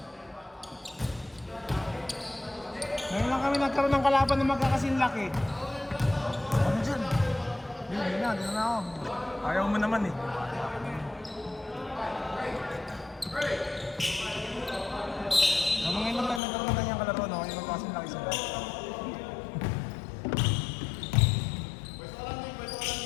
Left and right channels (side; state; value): right; drops out; at 16.4 s